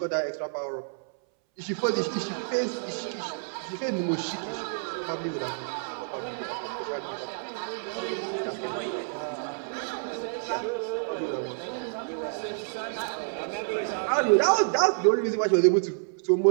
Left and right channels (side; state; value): left; silent; 59 dB below the other